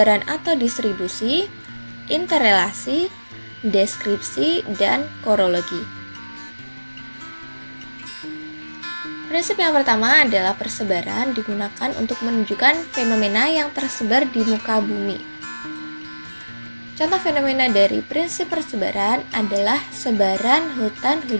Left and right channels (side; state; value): both; inverted; correlation -1.00